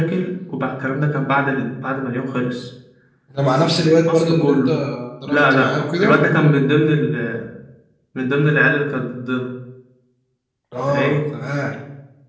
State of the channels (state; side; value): identical; both; correlation 1.00